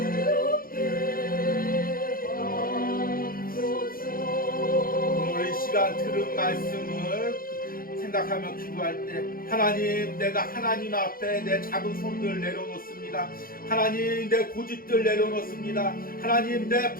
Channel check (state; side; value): late; right; 0.42 ms